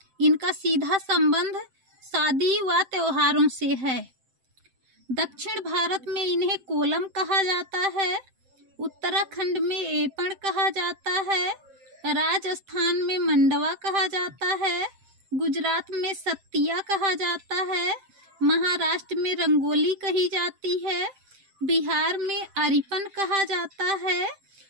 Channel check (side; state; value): left; late; 7.7 ms